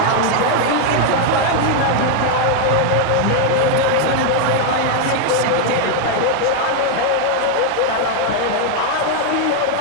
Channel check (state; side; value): different; both; correlation 0.00